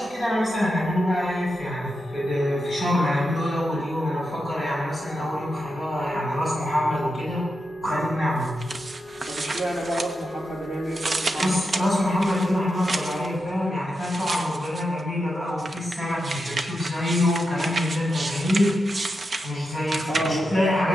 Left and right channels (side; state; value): both; normal; correlation 0.87